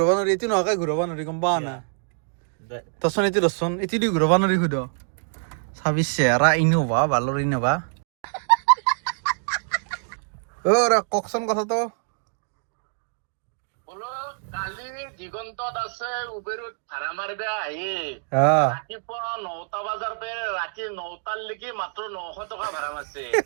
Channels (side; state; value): left; silent; digital silence